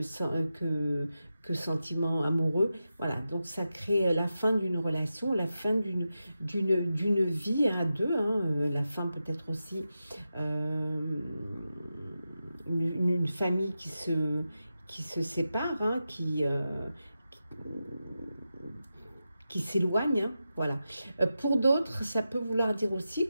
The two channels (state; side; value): inverted; both; correlation -0.90